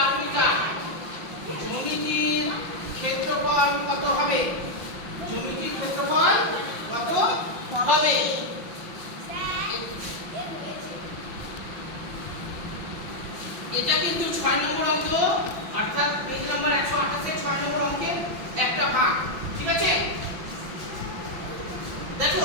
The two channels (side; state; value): left; late; 5.7 ms